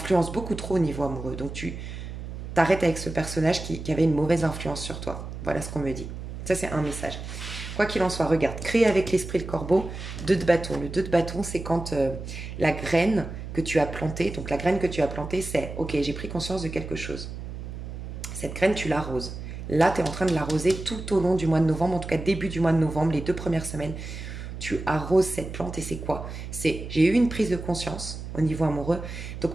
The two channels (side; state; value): right; noise; hum, 9 dB below the sound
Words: beaucoup trop au niveau amoureux. Donc tu t'arrêtes avec ce personnage qui avait une mauvaise influence sur toi. Voilà ce qu'on me dit. Ça c'est un message. Quoi qu'il en soit, regarde, créer avec l'esprit le corbeau, 2 de bâton. Le 2 de bâton, c'est quand la graine que tu as plantée, donc la graine que tu as plantée, c'est ok, j'ai pris conscience de quelque chose. Cette graine, tu l'arroses. Là, tu es en train de l'arroser tout au long du mois de novembre, en tout cas début du mois de novembre, les 2 premières semaines. Tu arroses cette plante et c'est quoi? C'est j'ai eu une prise de conscience au niveau amoureux, donc